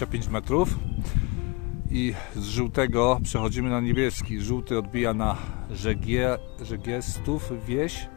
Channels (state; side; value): quieter; right; 26.8 dB